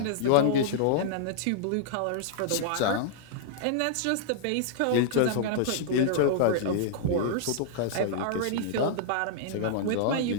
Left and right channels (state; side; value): different; both; correlation -0.01